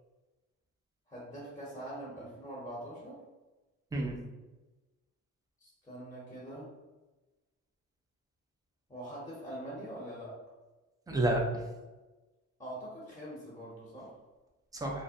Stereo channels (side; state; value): both; normal; correlation 0.49